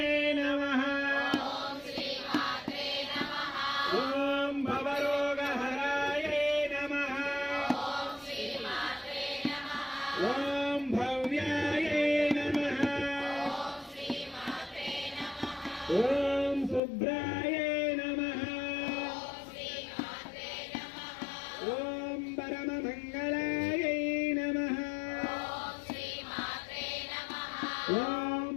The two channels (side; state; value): right; drops out; at 16.8 s